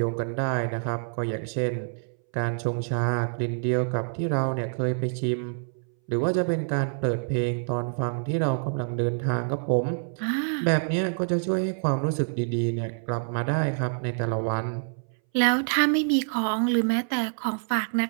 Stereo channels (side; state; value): left; silent; 60 dB below the other